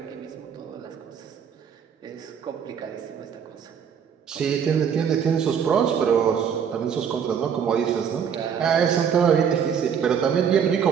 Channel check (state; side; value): quieter; left; 7.6 dB